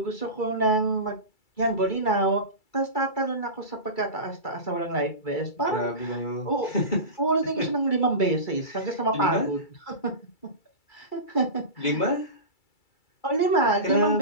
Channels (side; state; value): right; late; 2.3 ms